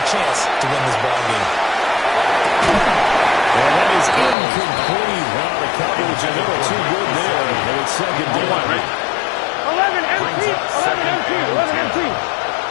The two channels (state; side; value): drops out; right; at 4.4 s